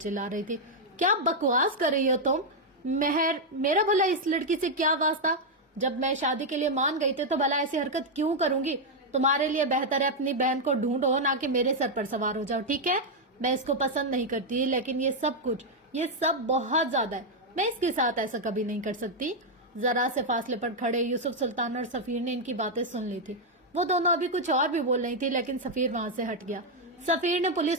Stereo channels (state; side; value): normal; both; correlation 0.00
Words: رہی تھی. کیا بکواس کر رہی ہو تم مہر, میرا بھلا اس لڑکی سے کیا واسطہ؟ جب میں شادی کے لیے مان گئی تھی تو بھلا ایسی حرکت کیوں کروں گی؟ تمہارے لیے بہتر ہے اپنی بہن کو ڈھونڈو, نہ کہ میرے سر پر سوار ہو جاؤ, ٹھیک ہے؟ میں اس کو پسند نہیں کرتی, لیکن یہ سب بہت زیادہ ہے. میں اس کے ساتھ ایسا کبھی نہیں کر سکتی. ذرا سے فاصلے پر کھڑے یوسف سلطان اور سفیر نے ان کی باتیں سن لی تھی. وہ دونوں ابھی کچھ اور بھی بول رہی تھی, لیکن سفیر وہاں سے ہٹ گیا. سفیر نے